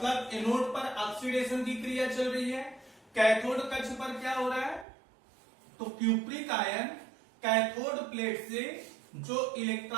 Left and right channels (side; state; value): left; drops out; at 4.9 s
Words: एनोड पर ऑक्सीडेशन की क्रिया चल रही है। कैथोड कक्ष पर क्या हो रहा है? तो क्यूप्रिक आयन कैथोड प्लेट से जो